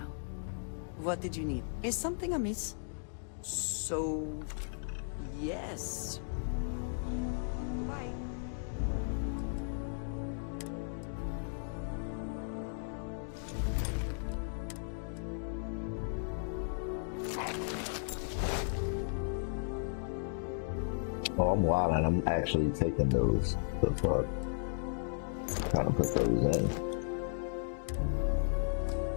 What did you need? Is something amiss? So... yes. Bye. Oh, I'm wild and I'm actually taking those. The fuck? Trying to put those in.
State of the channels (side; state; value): right; silent; digital silence